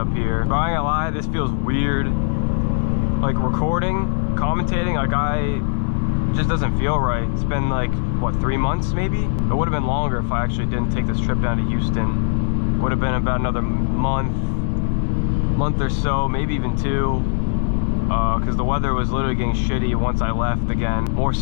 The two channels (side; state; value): right; silent; digital silence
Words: here. But I ain't gonna lie, this feels weird. Recording, commentating, it just doesn't feel right. It's been what, 3 months maybe? It would have been longer if I actually didn't take this trip down to Houston. Would have been about another month or so, maybe even 2. Because the weather was literally getting shitty once I left again. More